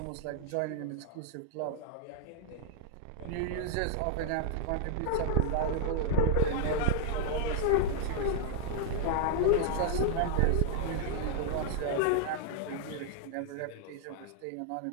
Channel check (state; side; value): different; both; correlation -0.01